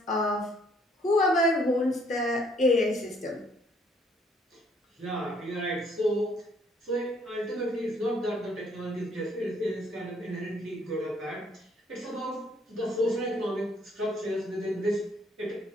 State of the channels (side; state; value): both; normal; correlation 0.65